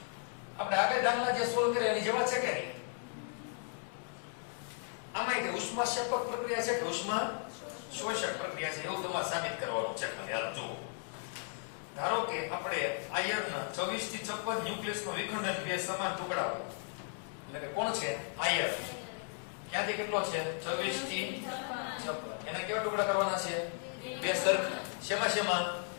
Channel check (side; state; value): right; silent; 54 dB below the other